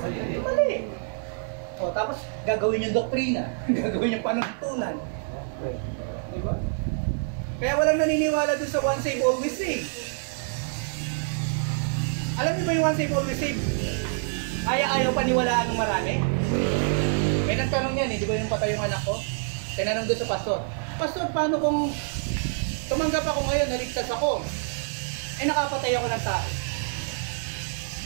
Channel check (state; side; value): silent; left; 60 dB below the other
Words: mali. O tapos gagawin yung doktrina, gagawin yung panuntunan. Diba? Kaya walang naniniwala dun sa one save, always save. Alam niyo ba yung one save, always save? Ayaw paniwalaan ng marami? May nagtanong yan di ba yung patay yung anak ko? Tinanong doon sa pastor, Pastor, paano kung tumanggap ako ngayon, naligtas ako, nakapatay ako ng tao?